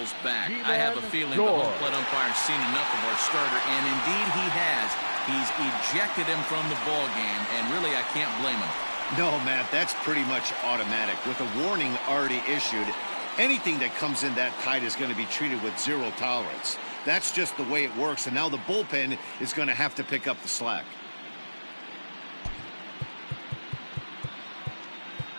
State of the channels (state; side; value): inverted; both; correlation -1.00